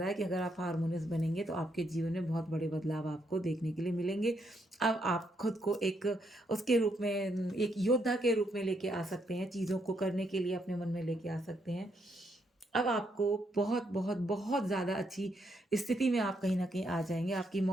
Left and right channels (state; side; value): normal; both; correlation 0.76